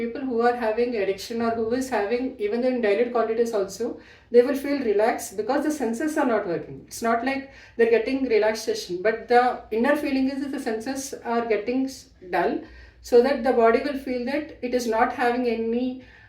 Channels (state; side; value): identical; both; correlation 1.00